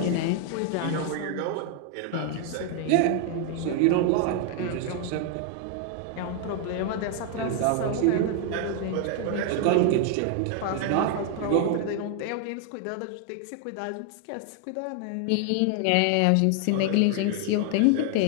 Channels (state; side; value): different; both; correlation 0.00